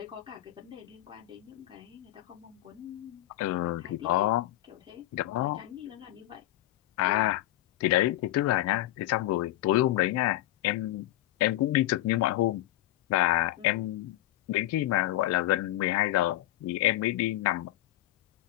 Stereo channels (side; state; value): right; quieter; 15.6 dB